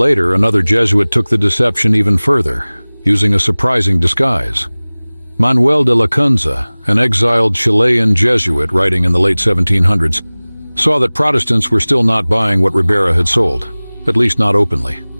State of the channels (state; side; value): inverted; both; correlation -1.00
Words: another Jesuit took the deception even further, using a surprising disguise. Manuel de Lacunza, an exiled Chilean Jesuit writing in the late 1700s, saw that Protestants were still not buying what Ribera had sold, at least not openly.